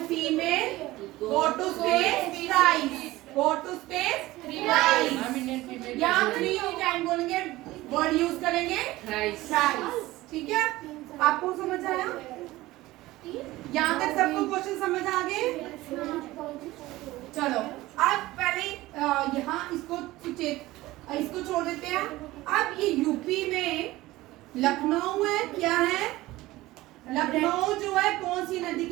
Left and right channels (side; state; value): left; quieter; 18.0 dB